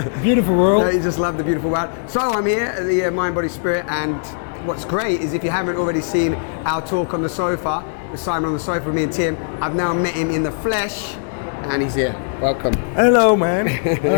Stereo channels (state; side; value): silent; right; digital silence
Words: Beautiful world. You just love the beautiful world. So I'm here at the Mind, Body, Spirit, and what's great is if you haven't already seen our talk on the sofa, with Simon on the sofa with me and Tim, I've now met him in the flesh, and he's here. Welcome. Hello, man. How